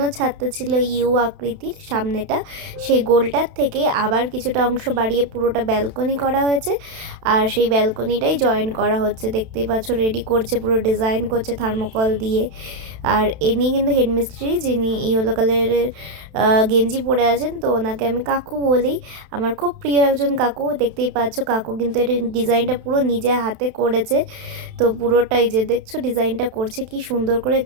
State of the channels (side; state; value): left; late; 32 ms